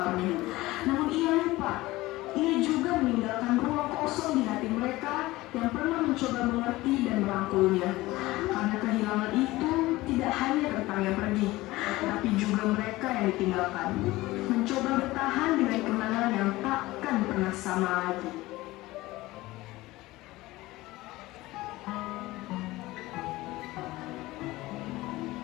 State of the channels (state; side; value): quieter; right; 18.8 dB